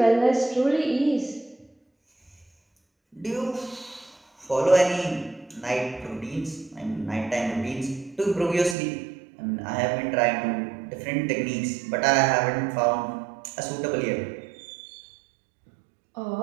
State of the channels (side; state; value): left; drops out; at 8.8 s